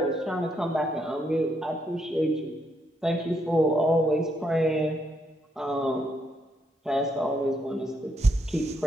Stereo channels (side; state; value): both; normal; correlation 0.76